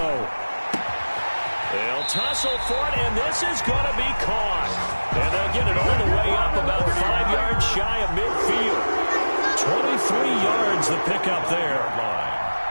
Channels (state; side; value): inverted; both; correlation -1.00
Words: They'll tussle for it, and this is going to be caught. And they'll get it all the way up about 5 yards shy of midfield. 23 yards the pickup there.